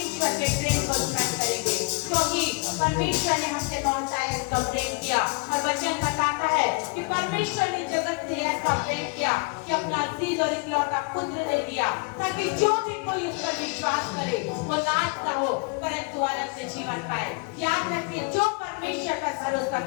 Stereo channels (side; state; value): right; quieter; 31.0 dB